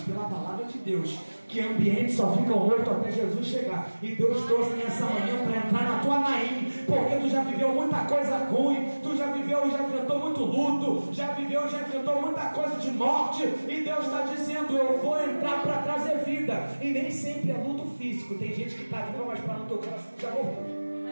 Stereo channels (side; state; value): both; inverted; correlation -1.00